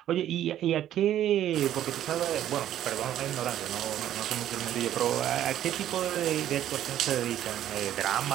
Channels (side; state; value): left; quieter; 11.7 dB